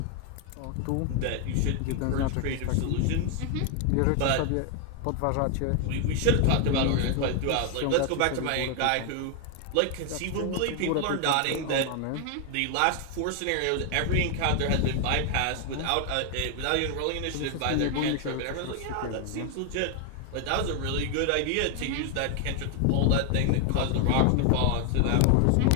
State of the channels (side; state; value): both; different; correlation 0.00